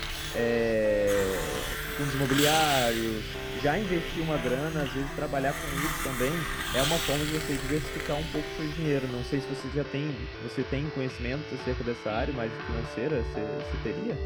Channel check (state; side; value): identical; both; correlation 1.00